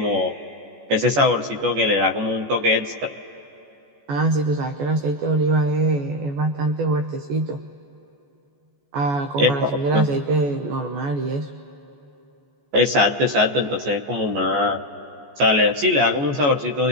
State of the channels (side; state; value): left; late; 14 ms